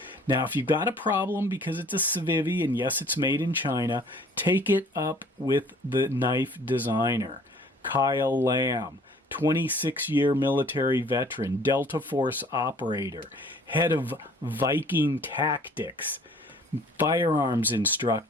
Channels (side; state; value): both; normal; correlation 0.54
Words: Now, if you've got a problem because it's a Civivi, and yes, it's made in China, take it up with the knife designer, Kyle Lamb, 26-year military veteran, Delta Force operator, head of Viking Tactics, firearms